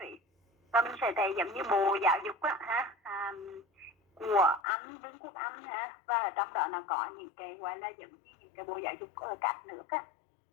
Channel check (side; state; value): right; drops out; at 4.6 s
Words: Và mình sẽ thấy giống như Bộ Giáo dục của Anh, Vương quốc Anh và ở trong đó nó có những cái gọi là giống như những cái Bộ Giáo dục ở các nước